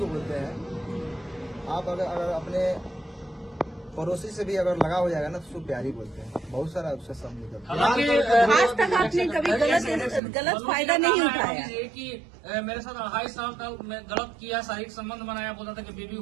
बोलते हैं। आप अगर अपने पड़ोसी से भी अगर लगा हो जाएगा ना, तो उसको प्यार ही बोलते हैं। बहुत सारा उससे सब निकलता है। आज तक आपने कभी गलत फायदा नहीं उठाया? कि मेरे साथ 28 साल तक मैं गलत किया, शारीरिक संबंध बनाया, बोलता था कि बेबी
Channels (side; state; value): left; drops out; at 10.2 s